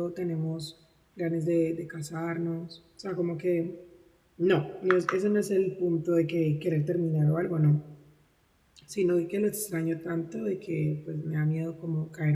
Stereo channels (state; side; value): identical; both; correlation 1.00